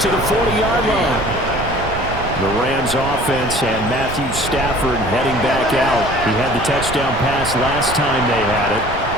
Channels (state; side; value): noise; right; rumble, 9 dB below the sound